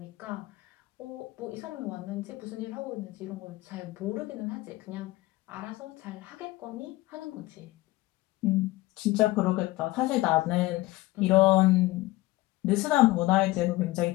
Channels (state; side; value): quieter; right; 19.3 dB